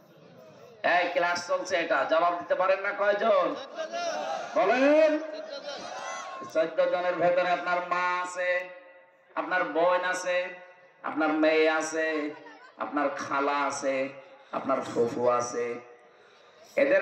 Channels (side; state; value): both; identical; correlation 1.00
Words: এই ক্লাস চলছে, এটা জবাব দিতে পারেন না? কয়জন বলেন? 14 জনের ভেতরে আপনার মা আছে, আপনার বোন আছে, আপনার মেয়ে আছে, আপনার খালা আছে, আপনার ফুফু আছে।